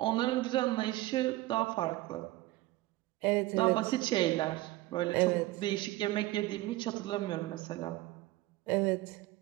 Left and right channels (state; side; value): quieter; left; 18.1 dB